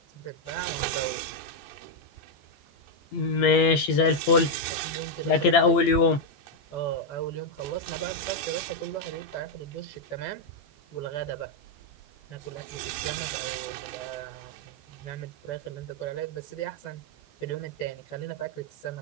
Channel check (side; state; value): right; late; 15 ms